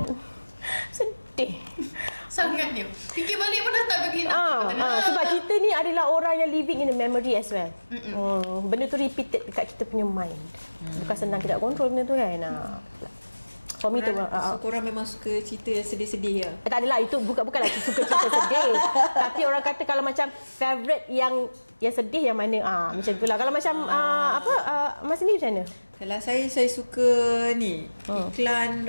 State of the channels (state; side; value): inverted; both; correlation -1.00